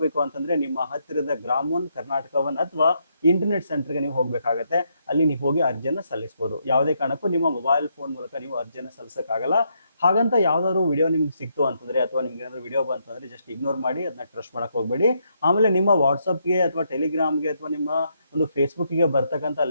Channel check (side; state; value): both; inverted; correlation -0.77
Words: ಅಂತಂದ್ರೆ ನಿಮ್ಮ ಹತ್ತಿರದ ಗ್ರಾಮ1, ಕರ್ನಾಟಕ1 ಅಥವಾ ಇಂಟರ್ನೆಟ್ ಸೆಂಟರ್ಗೆ ನೀವು ಹೋಗ್ಬೇಕಾಗತ್ತೆ. ಅಲ್ಲಿ ನೀವು ಹೋಗಿ ಅರ್ಜಿಯನ್ನ ಸಲ್ಲಿಸಬಹುದು. ಯಾವುದೇ ಕಾರಣಕ್ಕೂ ನಿಮ್ಮ ಮೊಬೈಲ್ ಫೋನ್ ಮೂಲಕ ನೀವು ಅರ್ಜಿಯನ್ನ ಸಲ್ಲಿಸಕ್ಕಾಗಲ್ಲ. ಹಾಗಂತ ಯಾವ್ದಾದ್ರು ವಿಡಿಯೋ ನಿಮ್ಗೆ ಸಿಕ್ತು ಅಂತಂದ್ರೆ ಅಥವಾ ನಿಮ್ಗೆ ಏನಾದ್ರು ವಿಡಿಯೋ ಬಂತು ಅಂದ್ರೆ ಜಸ್ಟ್ ಇಗ್ನೋರ್ ಮಾಡಿ, ಅದನ್ನ ಟ್ರಸ್ಟ್ ಮಾಡಕ್ ಹೋಗ್ಬೇಡಿ. ಆಮೇಲೆ ನಿಮ್ಮ ವಾಟ್ಸಪ್ಗೆ ಅಥವಾ ಟೆಲಿಗ್ರಾಮ್ಗೆ ಅಥವಾ ನಿಮ್ಮ ಒಂದು ಫೇಸ್ಬುಕ್ಗೆ ಬರ್ತಕ್ಕಂಥ